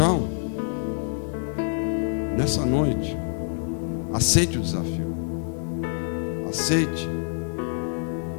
nessa noite, aceite o desafio. Aceite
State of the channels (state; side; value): silent; right; digital silence